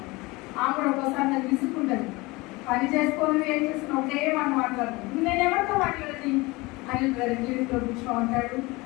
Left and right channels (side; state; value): right; quieter; 23.1 dB